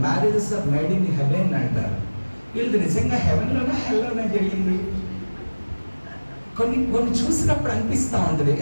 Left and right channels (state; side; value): inverted; both; correlation -1.00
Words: Marriages are made in heaven అంటారు. వీళ్ళు నిజంగా హెవెన్లోనే హెల్లోనే జరిగింది. కొన్ని చూసినప్పుడు అనిపిస్తూ ఉంటుంది